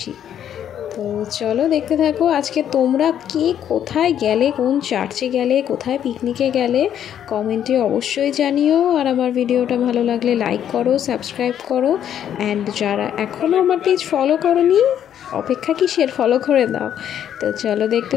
তো চলো দেখতে থাকো। আজকে তোমরা কে কোথায় গেলে, কোন চার্চে গেলে, কোথায় পিকনিকে গেলে কমেন্টে অবশ্যই জানিও। আর আমার ভিডিওটা ভালো লাগলে লাইক করো, সাবস্ক্রাইব করো, অ্যান্ড যারা এখনও আমার পেজ ফলো করোনি অপেক্ষা কিসের, ফলো করে দাও। তো চলো দেখতে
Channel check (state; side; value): quieter; right; 9.9 dB